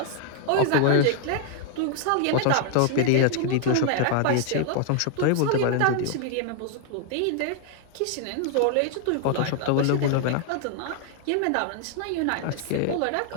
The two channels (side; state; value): both; different; correlation 0.00